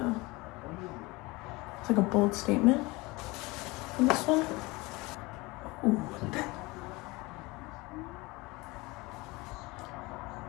it's like a bold statement in this one. Ooh, look at that.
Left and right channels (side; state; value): right; quieter; 23.2 dB